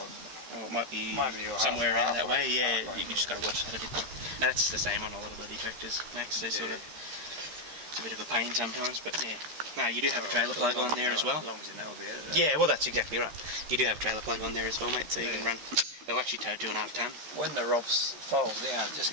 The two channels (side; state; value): left; late; 13 ms